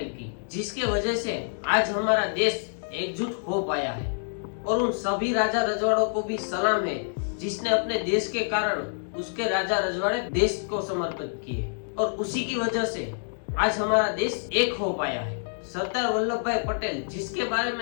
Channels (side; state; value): right; silent; digital silence